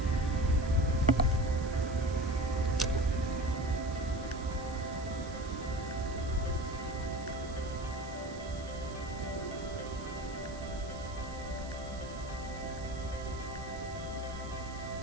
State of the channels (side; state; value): right; noise; hiss, 18 dB below the sound